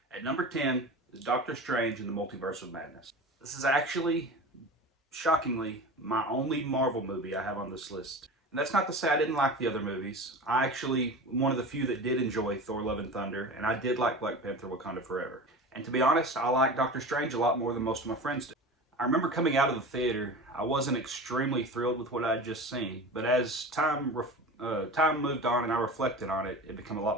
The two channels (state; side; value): normal; both; correlation 0.32